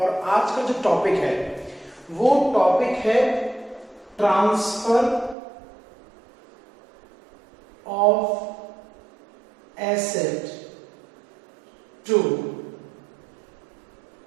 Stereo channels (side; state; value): left; drops out; at 5.4 s